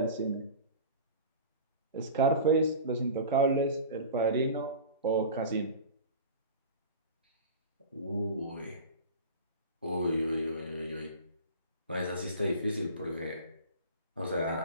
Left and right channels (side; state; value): both; inverted; correlation -0.35